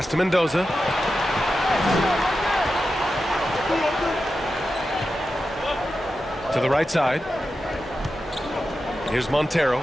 to Mendoza. the right side. Here's Montero.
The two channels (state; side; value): normal; both; correlation 0.91